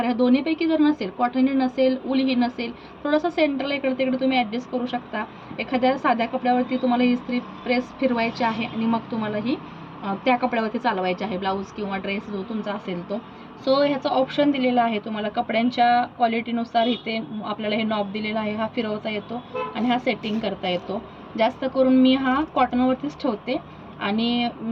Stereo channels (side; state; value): both; identical; correlation 1.00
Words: ह्या दोन्हीपैकी जर नसेल, कॉटनही नसेल, ऊलही नसेल, थोडंसं सेंटरला इकडे तिकडे तुम्ही ॲडजस्ट करू शकता. एखाद्या साध्या कपड्यावरती तुम्हाला इस्त्री प्रेस फिरवायची आहे आणि मग तुम्हाला ही त्या कपड्यावरती चालवायचे आहे, ब्लाऊज किंवा ड्रेस जो तुमचा असेल तो. सो ह्याचं ऑप्शन दिलेलं आहे तुम्हाला कपड्यांच्या क्वालिटीनुसार. इथे आपल्याला हे नॉब दिलेला आहे, हा फिरवता येतो आणि हा सेटिंग करता येतो. जास्त करून मी हा कॉटनवरतीच ठेवते आणि